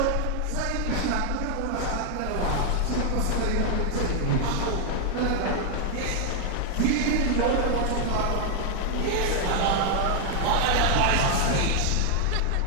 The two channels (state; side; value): different; both; correlation 0.00